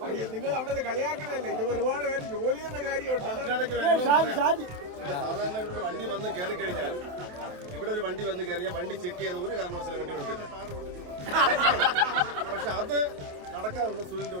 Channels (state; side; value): late; left; 27 ms